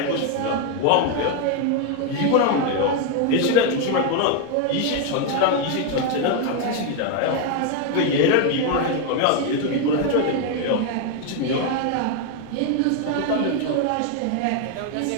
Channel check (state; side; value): different; both; correlation 0.01